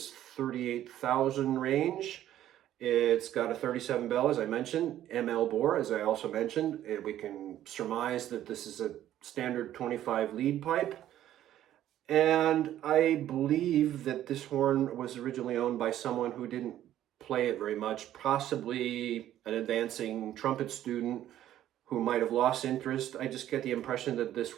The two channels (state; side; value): quieter; left; 12.3 dB